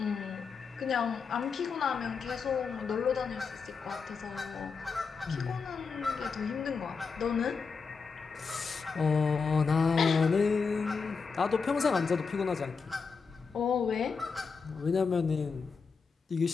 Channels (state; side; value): quieter; right; 5.2 dB